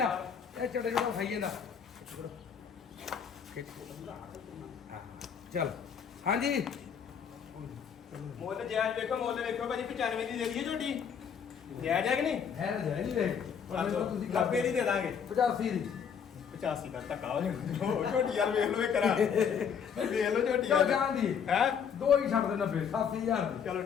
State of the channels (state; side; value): quieter; right; 7.3 dB